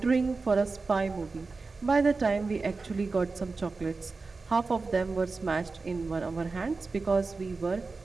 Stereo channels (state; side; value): quieter; left; 4.0 dB